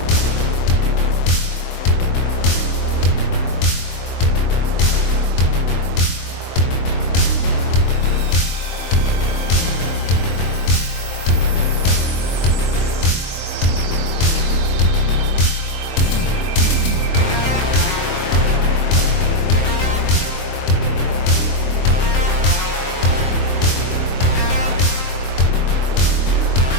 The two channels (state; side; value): late; right; 23 ms